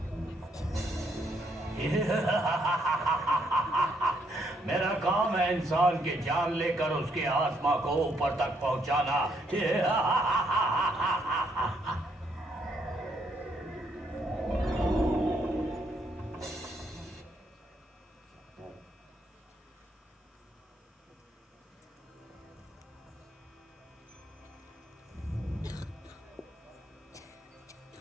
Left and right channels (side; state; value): both; normal; correlation 0.73